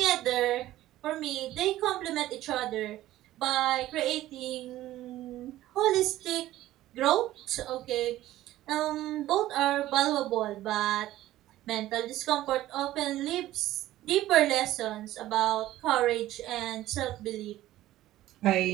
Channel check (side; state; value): left; quieter; 14.9 dB